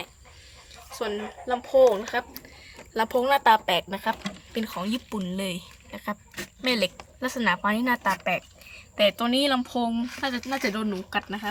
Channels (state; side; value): identical; both; correlation 1.00